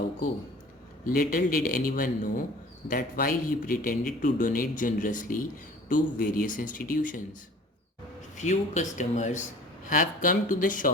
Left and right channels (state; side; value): normal; both; correlation 0.46